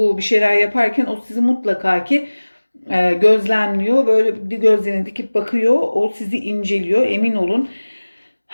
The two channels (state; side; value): inverted; both; correlation -1.00